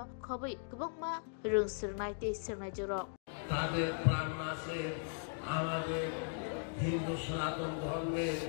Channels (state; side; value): silent; right; digital silence